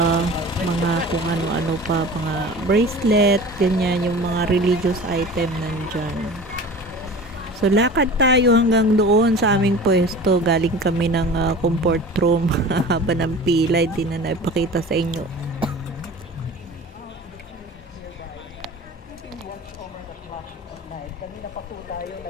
mga kung ano-ano pa, mga bracelet, ganyan, yung mga religious item nandyan. So, lakad tayo hanggang doon sa aming pwesto. Galing kami ng comfort room. Haba ng pila, hindi na naipakita sa inyo. Kanina pa po tayo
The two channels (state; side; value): normal; both; correlation 0.38